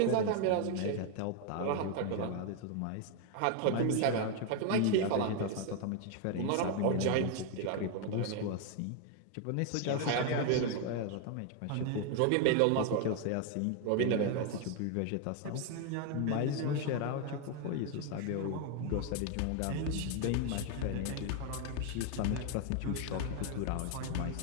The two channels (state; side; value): different; both; correlation 0.01